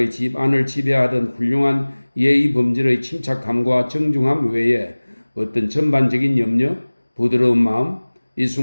집 안을 지배하던 훌륭한 예의 범절의 침착함과 정중함 외에 어떤 전반적인 염려, 부드러운 마음, 이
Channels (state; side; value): inverted; both; correlation -1.00